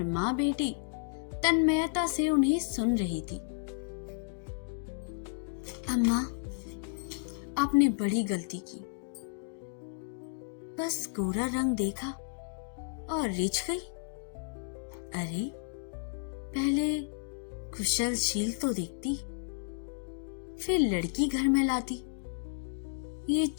माँ बेटी तन्मयता से उन्हें सुन रही थी। अम्मा, आपने बड़ी गलती की। बस गोरा रंग देखा और रिझ गई। अरे, पहले कुशलशील तो देखती, फिर लड़की घर में लाती। ये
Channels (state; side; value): silent; right; digital silence